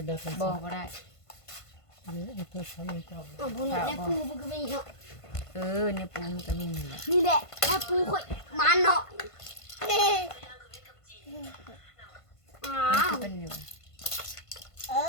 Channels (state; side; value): late; right; 1.5 ms